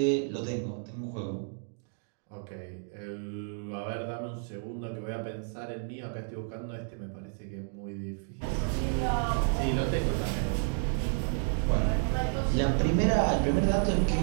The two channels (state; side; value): silent; left; 57 dB below the other